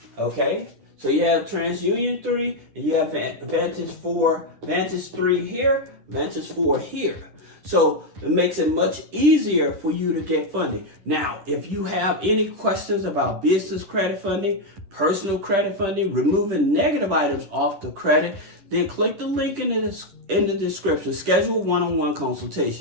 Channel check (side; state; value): left; late; 10 ms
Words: Okay, so you have TransUnion 3, and you have Vantage 4, Vantage 3 here, Vantage 4 here. So it makes it much easier for you to get funding. Now, if you have any questions about business credit funding, personal credit funding, removing negative items off the credit, then click the link in the description. Schedule a one-on-one